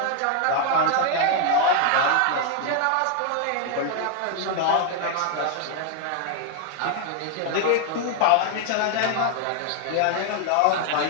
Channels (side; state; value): both; different; correlation 0.00